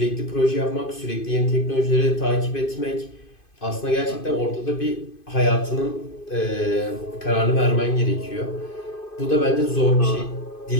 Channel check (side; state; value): right; late; 2.5 ms